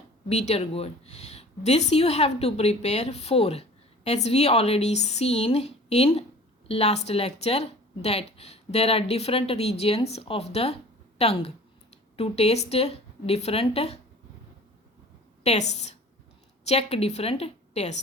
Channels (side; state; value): both; normal; correlation 0.45